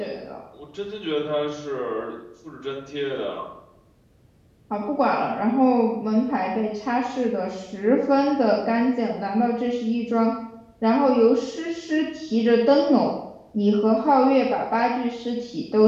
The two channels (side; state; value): both; identical; correlation 1.00